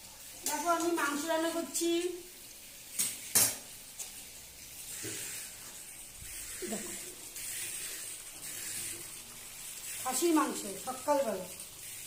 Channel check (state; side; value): identical; both; correlation 1.00